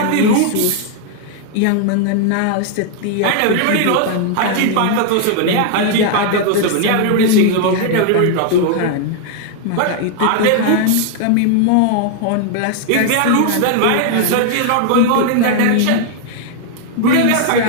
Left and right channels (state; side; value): different; both; correlation 0.00